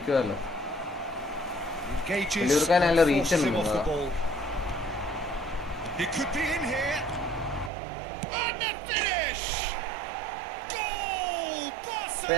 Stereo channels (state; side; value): drops out; left; at 7.7 s